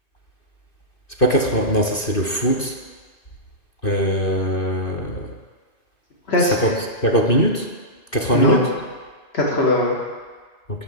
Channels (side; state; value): right; late; 2.5 ms